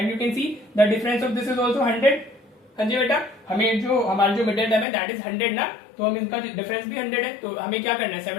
you can see the difference of this is also 100। हाँ जी बेटा, हमें जो हमारा जो मिडिल टर्म है दैट इज 100 ना, तो हम इनका डिफरेंस भी 100 है। तो हमें क्या करना है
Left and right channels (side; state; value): right; drops out; at 4.9 s